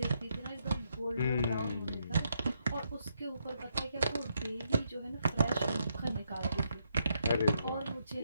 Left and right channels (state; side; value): inverted; both; correlation -0.78